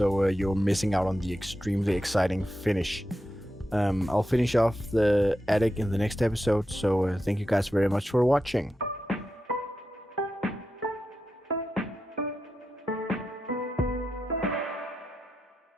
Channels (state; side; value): normal; both; correlation 0.89